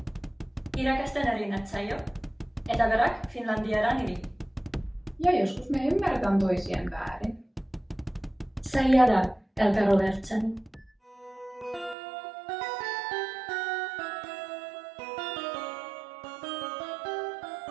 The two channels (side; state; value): left; drops out; at 12.0 s